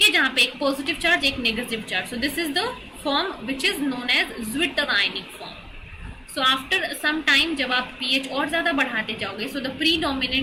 है, जहां पे एक पॉजिटिव चार्ज एक negative charge. So this is the form which is known as zwitter ionic form. So after some time जब आप pH और ज्यादा बढ़ाते जाओगे, so the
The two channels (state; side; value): identical; both; correlation 1.00